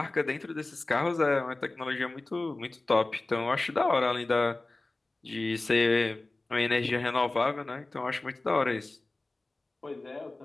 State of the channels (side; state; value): right; quieter; 3.0 dB